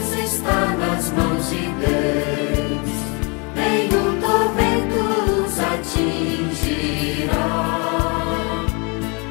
está nas mãos de Deus, nenhum tormento os atingirá.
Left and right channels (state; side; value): quieter; right; 31.6 dB